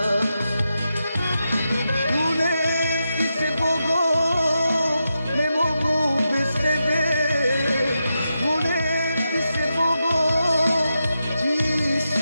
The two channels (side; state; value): both; inverted; correlation -0.88